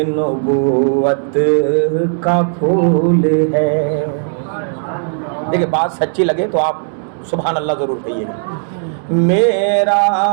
نبوت کا پھول ہے۔ دیکھیں بات سچی لگے تو آپ سبحان اللہ ضرور کہیے گا۔ میرا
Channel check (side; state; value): left; silent; digital silence